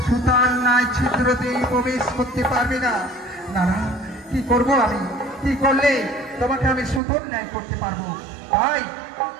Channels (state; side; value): drops out; left; at 7.0 s